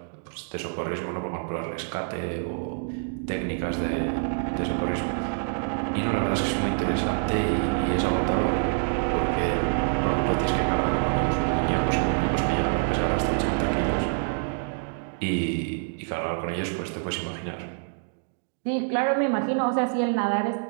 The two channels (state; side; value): silent; left; digital silence